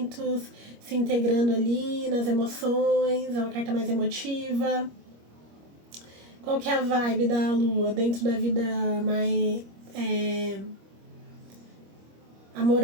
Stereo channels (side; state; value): left; late; 25 ms